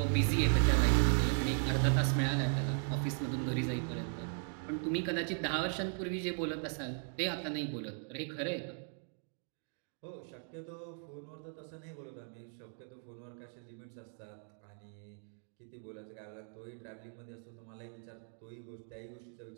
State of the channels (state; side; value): silent; left; 53 dB below the other